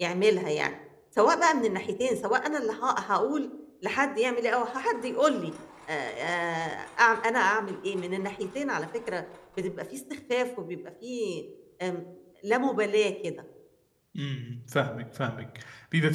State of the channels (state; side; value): identical; both; correlation 1.00